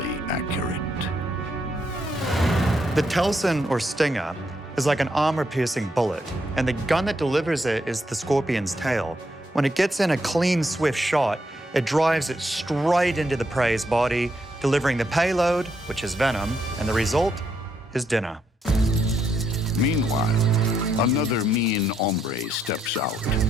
accurate. The telson, or stinger, is like an armor-piercing bullet, and the gun that delivers it is the scorpion's tail. When it gets in a clean, swift shot, it drives it straight into the prey's body, delivering the payload, which is venom, and the result is dinner. Meanwhile, another mean hombre steps out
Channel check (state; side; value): normal; both; correlation 0.77